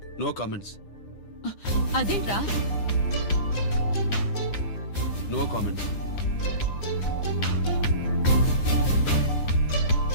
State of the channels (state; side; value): late; right; 9.9 ms